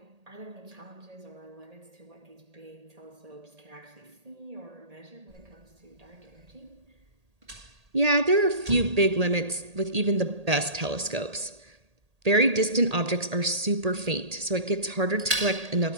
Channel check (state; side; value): late; left; 1.8 ms